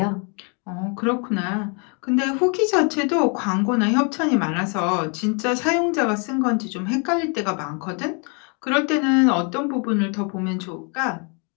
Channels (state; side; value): quieter; right; 35.9 dB